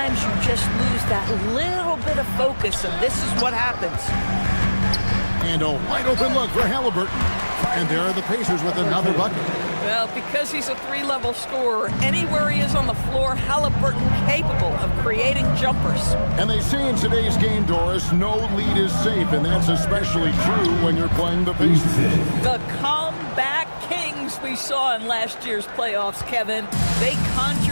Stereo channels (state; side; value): inverted; both; correlation -1.00